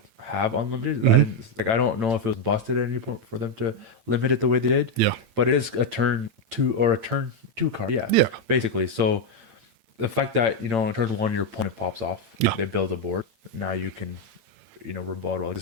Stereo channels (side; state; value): left; late; 8.9 ms